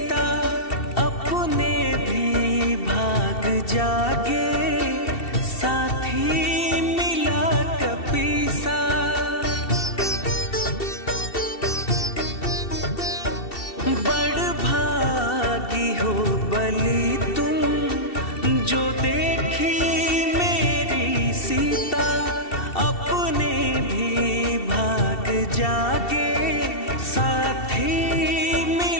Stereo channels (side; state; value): right; late; 2.7 ms